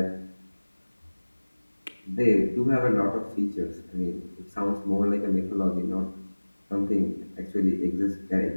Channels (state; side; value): inverted; both; correlation -1.00